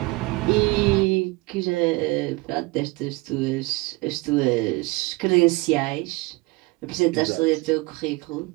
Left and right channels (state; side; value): quieter; left; 23.7 dB